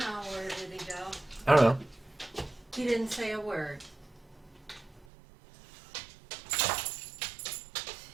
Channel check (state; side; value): drops out; left; at 5.1 s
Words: where did he go? I don't know. He didn't say a word.